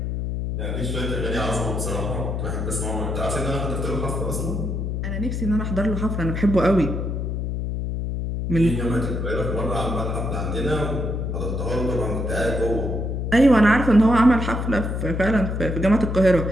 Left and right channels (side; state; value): left; noise; hum, 2 dB below the sound